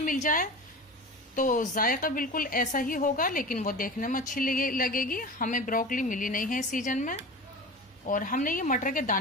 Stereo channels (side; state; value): both; normal; correlation 0.32